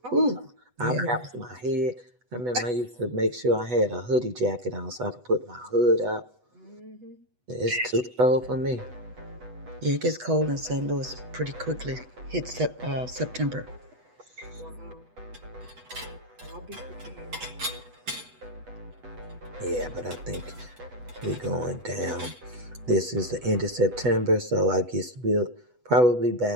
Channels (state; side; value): late; left; 8.1 ms